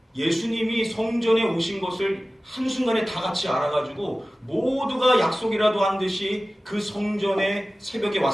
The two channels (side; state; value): both; normal; correlation 0.96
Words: 예수님이 성전에 오신 것을 한순간에 다 같이 알아가지고 모두가 약속이라도 한 듯이 그 성전에 새벽에